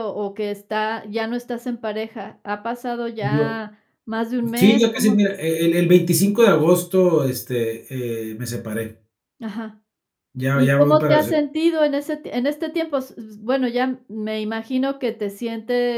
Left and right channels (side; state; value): both; identical; correlation 1.00